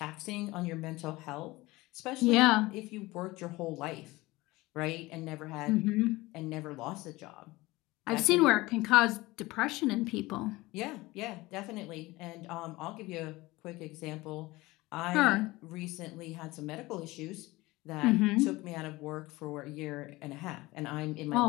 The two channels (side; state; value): right; quieter; 20.4 dB